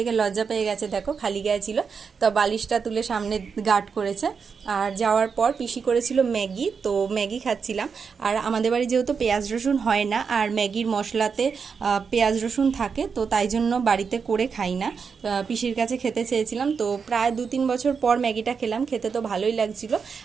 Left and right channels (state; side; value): quieter; left; 5.8 dB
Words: লজ্জা পেয়ে গেছে, দেখো খালি গায়ে ছিল। তো বালিশটা তুলে সামনে গার্ড করেছে। আর যাওয়ার পর পিসি করেছিল ম্যাগি, তো ম্যাগি খাচ্ছিলাম। আর আমাদের বাড়ি যেহেতু পেঁয়াজ রসুন হয় না, আর ম্যাগির মশলাতে পেঁয়াজ রসুন থাকে, তো তাই জন্য বাড়িতে করে খাই না। পিসির কাছে খেতে চেয়েছিলাম, তো প্রায় 2-3 বছর পর ম্যাগিটা খেলাম। খেতে তো ভালোই লাগছিল।